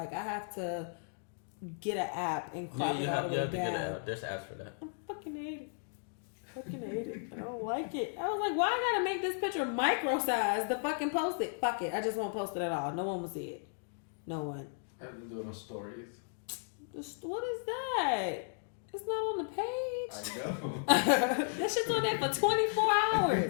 I have to get an app and crop it all the way down. Get an app. There's apps for that. I fucking hate it. I don't like it. I was like, why I gotta make this picture micro size to fucking post it? Fuck it. I just won't post it at all. No one will see it. No one. I've been doing stories. What is that? It's not on the page. I know. That shit's on there for 24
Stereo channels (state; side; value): silent; right; digital silence